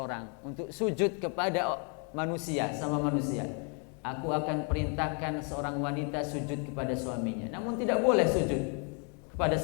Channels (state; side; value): quieter; right; 38.2 dB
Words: untuk sujud kepada manusia, sama manusia, aku akan perintahkan seorang wanita sujud kepada suaminya. Namun tidak boleh sujud kepada